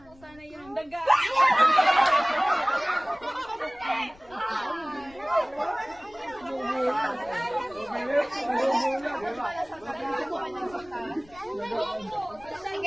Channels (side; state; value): left; noise; rumble, 25 dB below the sound